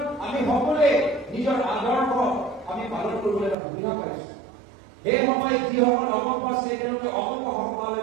আমি সকলোৱে নিজৰ আদৰ্শ আমি পালন কৰিবলৈ এটা সুবিধা পাইছো সেই সময়ত যিসকল অপক্ষ আছে তেওঁলোকে অপক্ষ সভালৈ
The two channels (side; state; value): left; drops out; at 3.6 s